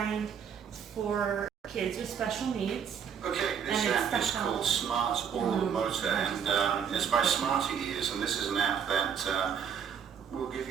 for kids with special needs. Okay, this app is called Smart Oral Motor, and it's by Smarty Ears, and this is an app that will give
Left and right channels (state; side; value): quieter; left; 7.5 dB